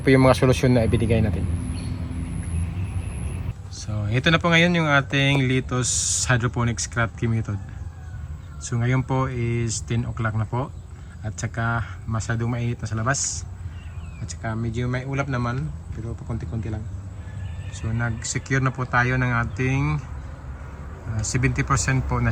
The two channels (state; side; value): identical; both; correlation 1.00